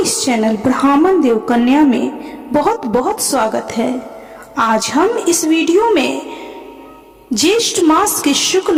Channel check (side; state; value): both; identical; correlation 1.00